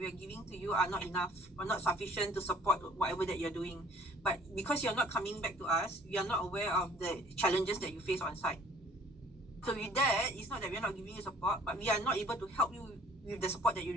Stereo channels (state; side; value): normal; both; correlation 0.54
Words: are giving to you are not enough or not sufficient to support whatever that you're doing. But because you're not coming back to us, we are not aware of the challenges that you face on site. So with that, it's not that we're not giving you support, but we are not able to help you with the support that you